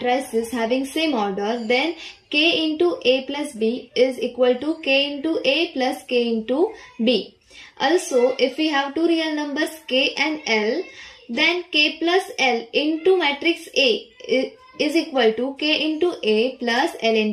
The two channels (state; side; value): identical; both; correlation 1.00